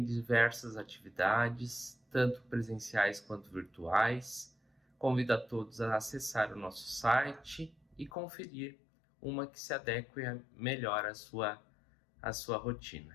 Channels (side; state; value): right; drops out; at 8.1 s